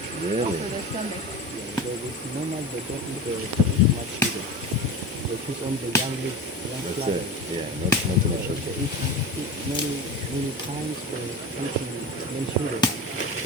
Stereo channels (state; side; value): normal; both; correlation 0.29